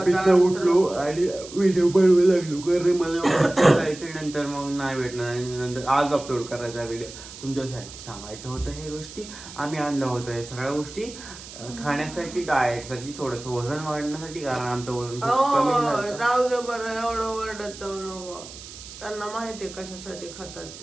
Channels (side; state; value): right; noise; hiss, 15 dB below the sound